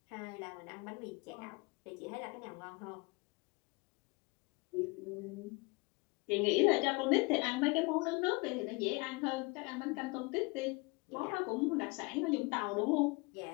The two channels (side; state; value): right; quieter; 27.6 dB